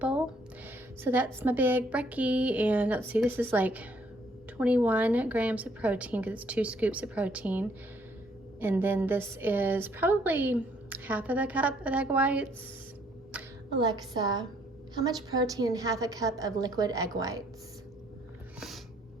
So that's my big brekkie. And let's see, this is like 21 grams of protein because it's 2 scoops of protein. And then this is probably half of a cup of egg whites. Alexa, how much protein in half a cup of liquid egg whites?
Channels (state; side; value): normal; both; correlation 0.66